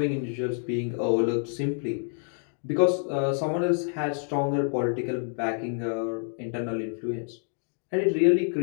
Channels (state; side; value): silent; right; 60 dB below the other